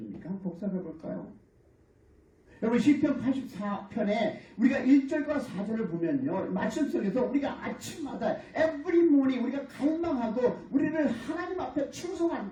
한번 복습해 볼까요? 여러분 시편 84편에 우리가 1절과 4절을 보면요, 말씀 속에서 우리가 아침마다 every morning 우리가 갈망하고 우리를 하나님 앞에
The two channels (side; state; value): both; identical; correlation 1.00